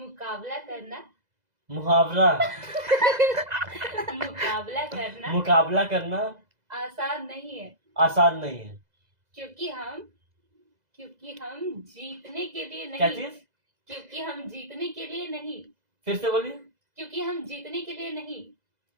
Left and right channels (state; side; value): late; left; 2.0 ms